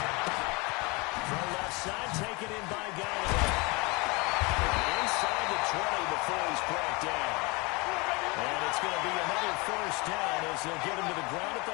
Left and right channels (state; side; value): quieter; right; 27.0 dB